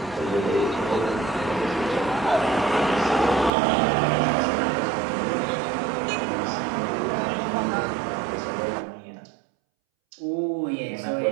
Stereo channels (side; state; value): left; drops out; at 3.5 s